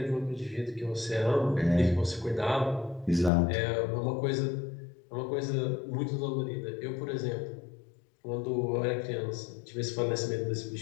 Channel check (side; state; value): right; drops out; at 3.3 s